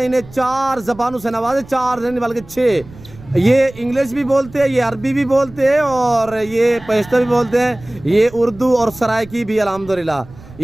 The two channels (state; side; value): noise; right; rumble, 20 dB below the sound